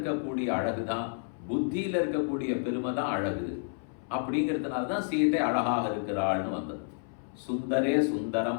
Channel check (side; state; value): right; silent; 58 dB below the other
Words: அழகுதான், புத்தியில இருக்கக்கூடிய பெருமை தான் அழகு. அப்படிங்கிறதுனால தான் சீதை அழகாக இருக்கிறாள்னு வந்தது. சுந்தரே